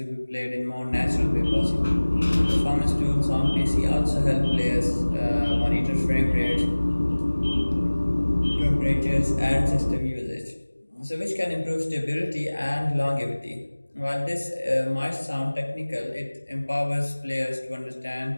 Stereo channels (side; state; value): both; inverted; correlation -1.00